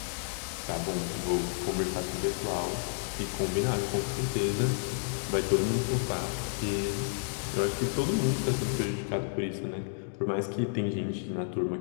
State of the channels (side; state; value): right; silent; digital silence